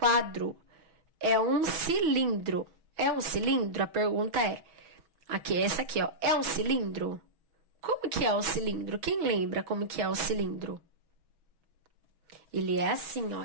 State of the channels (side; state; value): left; late; 6.2 ms